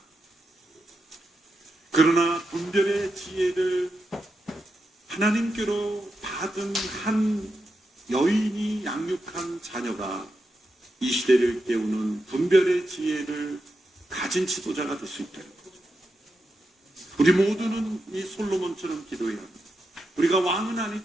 그러나 분별의 지혜를 하나님께로 받은 한 여인이 양육한 자녀가 이 시대를 깨우는 분별의 지혜를 가진 지도자가 될 수 있다는 거죠. 우리 모두는 이 솔로몬처럼 기도해야 합니다. 우리가 왕은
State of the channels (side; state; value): both; normal; correlation 0.87